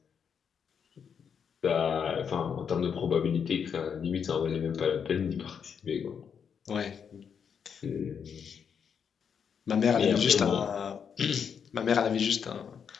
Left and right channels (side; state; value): right; quieter; 7.1 dB